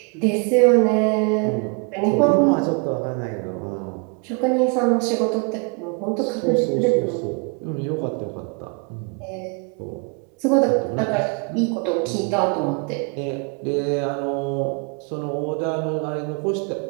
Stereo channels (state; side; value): quieter; left; 35.0 dB